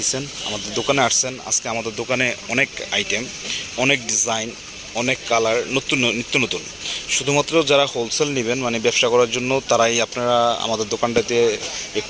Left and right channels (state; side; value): identical; both; correlation 1.00